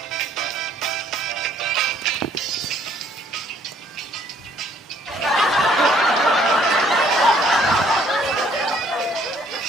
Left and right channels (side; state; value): both; normal; correlation 0.63